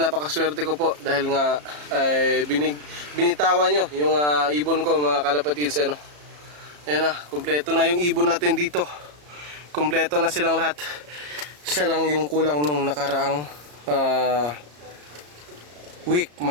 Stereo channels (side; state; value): left; late; 34 ms